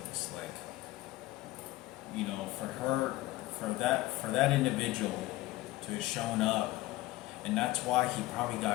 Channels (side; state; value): right; quieter; 18.0 dB